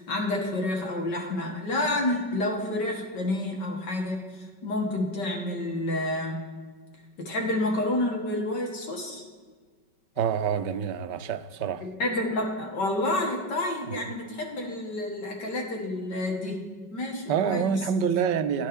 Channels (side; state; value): right; late; 5.3 ms